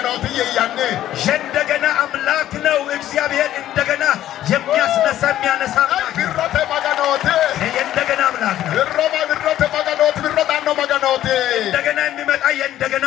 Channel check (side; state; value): right; quieter; 12.7 dB